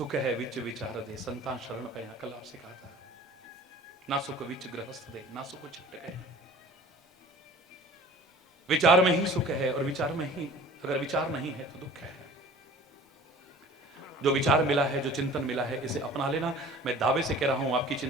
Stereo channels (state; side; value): normal; both; correlation 0.45